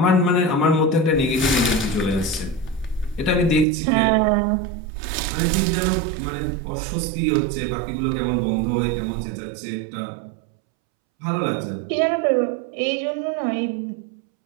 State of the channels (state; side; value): drops out; left; at 3.7 s